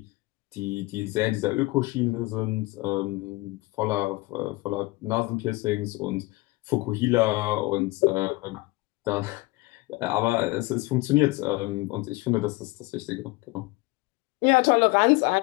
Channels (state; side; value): quieter; right; 22.2 dB